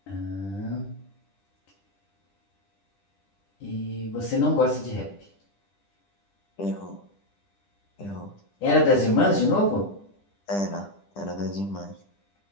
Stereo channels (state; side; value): late; right; 10 ms